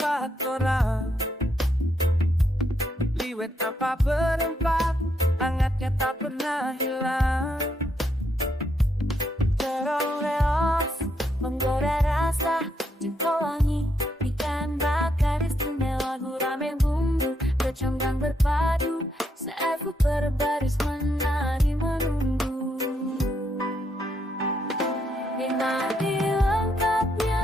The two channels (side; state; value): both; normal; correlation 0.77